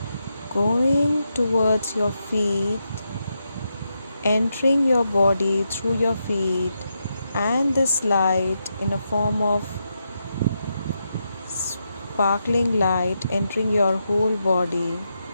going towards your feet, entering your body through your feet, and this light in a form of sparkling light entering your whole body,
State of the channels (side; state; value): both; inverted; correlation -0.84